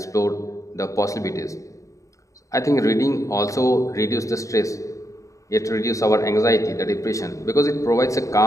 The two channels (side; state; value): right; late; 0.16 ms